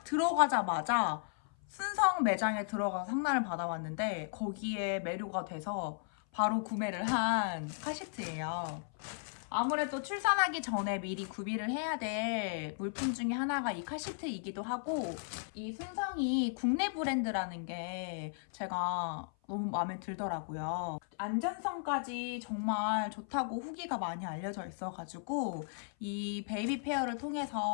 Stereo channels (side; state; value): right; silent; 54 dB below the other